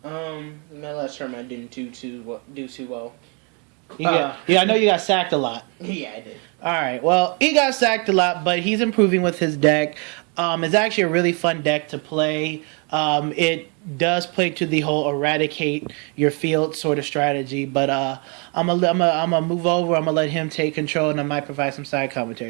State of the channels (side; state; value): left; quieter; 34.9 dB